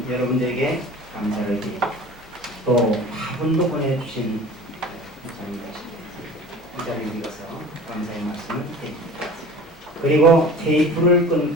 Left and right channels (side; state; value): both; normal; correlation 0.40